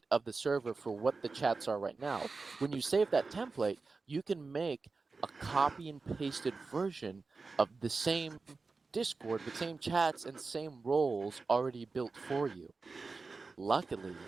of the server for what the chats are right now. When you save that template, you can make a copy and pasted version of the same Discord with same chats and same roles already built for you. Luckily,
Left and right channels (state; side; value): quieter; left; 4.1 dB